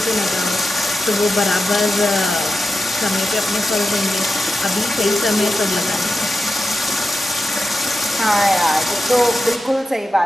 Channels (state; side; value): normal; both; correlation 0.90